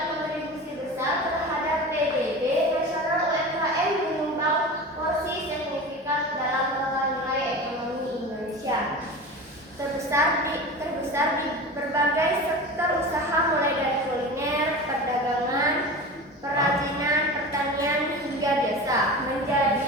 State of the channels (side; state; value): both; normal; correlation 0.32